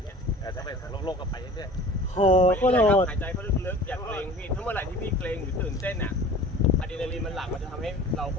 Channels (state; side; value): normal; both; correlation 0.43